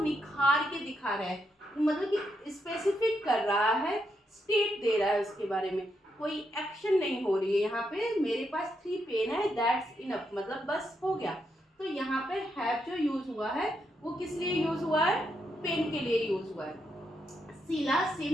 के दिखा रहा है, मतलब कि स्पेसिफिक कर रहा है, स्टेट दे रहा है उसके बारे में। कोई एक्शन नहीं हो रही है यहाँ पे, मेरे पास 3 पेन है, दैट्स इनफ, मतलब बस हो गया। तो यहाँ पे हैव जो यूज हुआ है वो किस लिए यूज हुआ है, पेन के लिए यूज हुआ है। शीला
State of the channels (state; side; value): normal; both; correlation 0.81